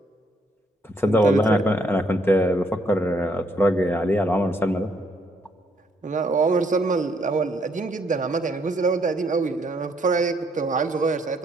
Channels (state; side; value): normal; both; correlation 0.70